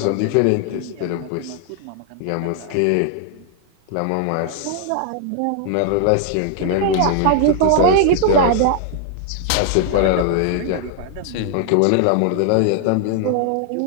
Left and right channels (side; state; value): both; different; correlation 0.00